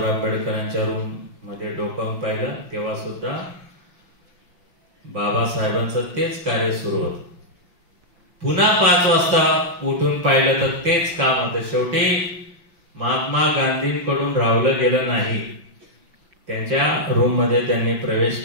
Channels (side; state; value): left; late; 5.5 ms